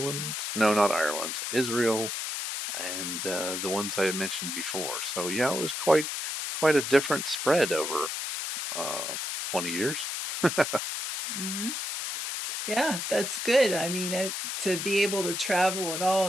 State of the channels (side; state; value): left; noise; hiss, 4 dB below the sound